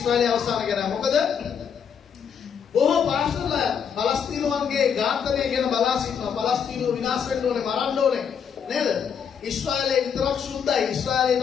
අවසානය ගැනයි. මොකද බොහෝ පාස්ටර්ලා පලස්තීනුවන්ගේ ඝාතනය ගැන බලා සිටිනවා. පලස්තීනුව විනාශ වෙන්න ඕනේ, මරන්න ඕනේ නේද? ඊශ්‍රායලයේ විතරක් සුද්ධයි. ඊශ්‍රායලයේ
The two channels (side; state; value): right; quieter; 7.3 dB